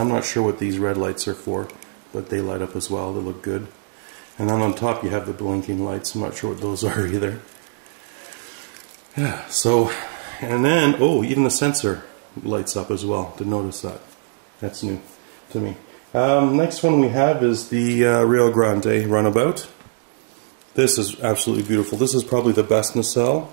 not sure what these red lights are for, but they light up as well. They look good. And then on top you have the blinking lights. I'm not sure what those are either. Yeah, so, and then, oh, even the sensor lights up as well. Didn't notice that. That's new to me. Next one we have is the Rio Grande Runabout. This is absolutely beautiful. This is probably the best nacelle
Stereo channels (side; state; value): left; silent; 64 dB below the other